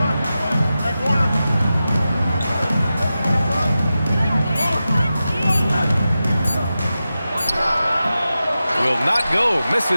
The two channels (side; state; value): both; inverted; correlation -0.93